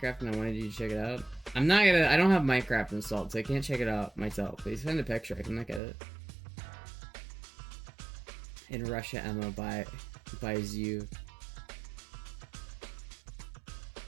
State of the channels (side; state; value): left; drops out; at 5.8 s